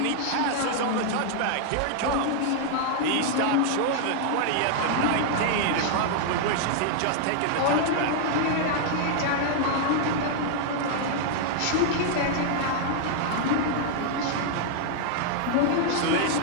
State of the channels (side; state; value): both; different; correlation 0.00